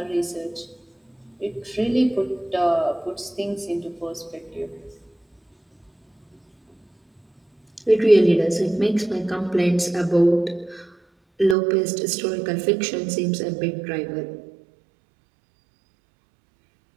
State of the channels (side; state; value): left; drops out; at 11.6 s